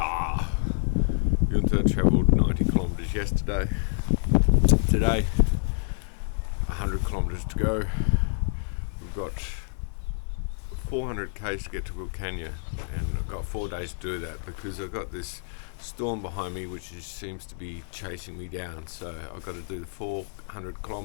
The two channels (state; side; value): silent; right; 60 dB below the other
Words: Junta travelled 90 kilometres yesterday. Today, 100 kilometres to go. We've got 400 k's to get to Willcannia, and I've got 4 days to do that because I've got this storm behind me which seems to be chasing me down. So I've got to do the 400